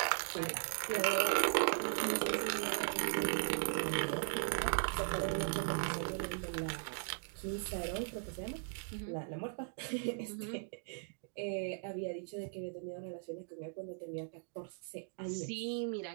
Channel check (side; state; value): left; silent; digital silence